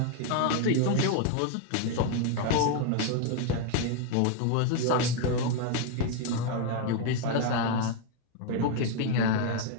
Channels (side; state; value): both; different; correlation 0.00